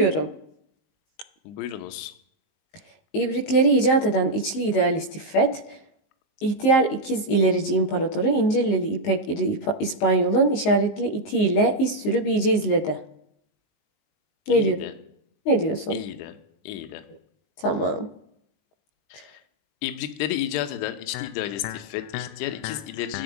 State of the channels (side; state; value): right; late; 19 ms